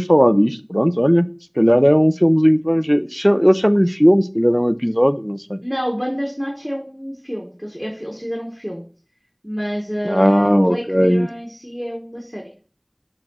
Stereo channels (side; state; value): both; identical; correlation 1.00